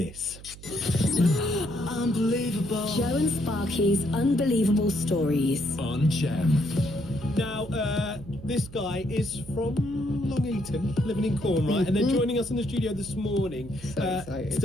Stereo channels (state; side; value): noise; right; hum, 17 dB below the sound